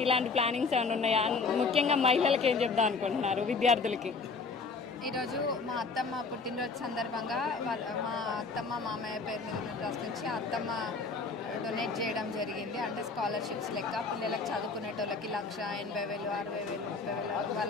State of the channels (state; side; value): quieter; right; 4.5 dB